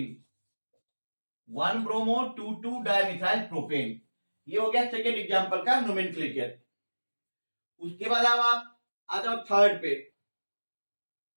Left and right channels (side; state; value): both; inverted; correlation -1.00